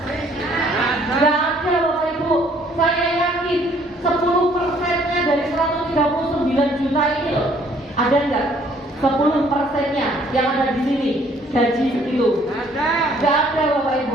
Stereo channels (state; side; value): normal; both; correlation 0.62